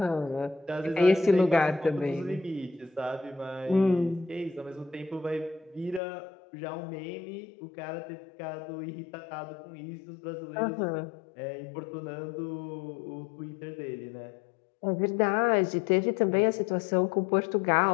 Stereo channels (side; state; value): right; drops out; at 6.0 s